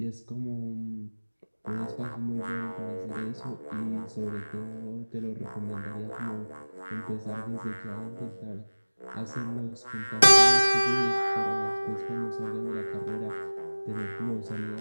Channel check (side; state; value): both; inverted; correlation -1.00